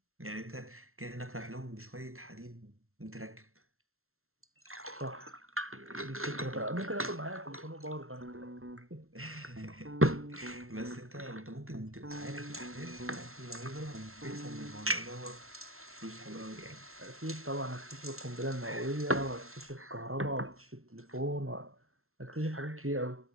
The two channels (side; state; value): left; late; 0.62 ms